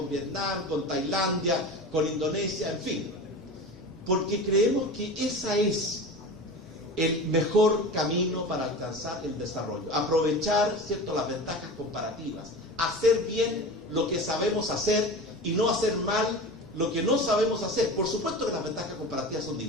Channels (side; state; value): both; normal; correlation 0.31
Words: Vietnam, con Tailandia, con Indonesia, en fin. Porque creemos que esa es el mejor camino para alcanzar el desarrollo. Aprovechar, ¿cierto?, las ventajas comparativas. Hacer bien lo que sabemos hacer y no hacer mal lo que no sabemos hacer. Por supuesto que las ventajas comparativas son